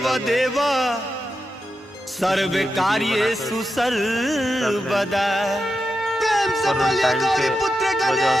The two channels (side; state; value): both; normal; correlation 0.89